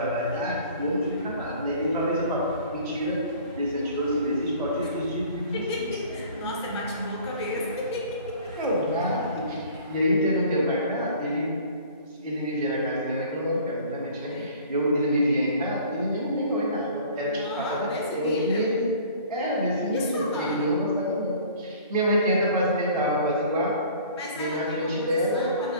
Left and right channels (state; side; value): inverted; both; correlation -0.48